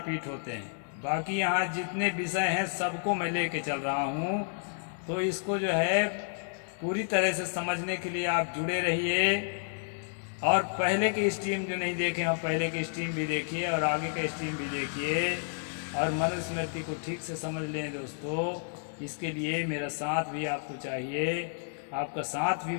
होते हैं। बाकी यहाँ जितने विषय हैं सबको मैं लेके चल रहा हूँ, तो इसको जो है पूरी तरह से समझने के लिए आप जुड़े रहिए। और पहले के स्ट्रीम जो नहीं देखे हैं, पहले के स्ट्रीम भी देखिए और आगे का स्ट्रीम भी देखिए और मनुस्मृति को ठीक से समझ लें दोस्तों। इसके लिए मेरा साथ भी आपको चाहिए, आपका साथ भी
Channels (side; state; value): right; silent; digital silence